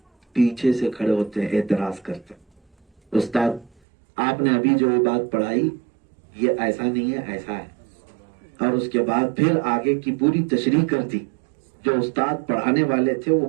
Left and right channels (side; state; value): left; drops out; at 3.7 s